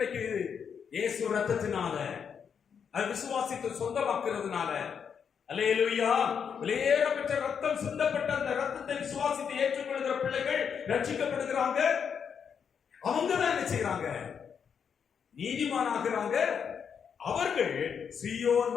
இயேசு ரத்தத்தினால, அது விசுவாசித்து சொந்தமாக்குறதுனால. அல்லேலூயா. வெளியேறப்பட்ட ரத்தம் சிந்தப்பட்ட அந்த ரத்தத்தை விசுவாசித்து ஏற்றுக்கொள்கிற பிள்ளைகள் ரட்சிக்கப்படுகிறாங்க. அவங்க தான் என்ன செய்யறாங்க? நீதிமானாகிறாங்க. அவர்கள் சீயோன்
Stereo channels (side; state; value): right; quieter; 7.1 dB